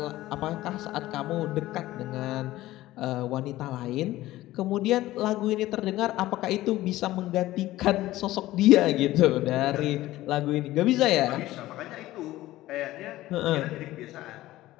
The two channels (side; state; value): right; quieter; 16.2 dB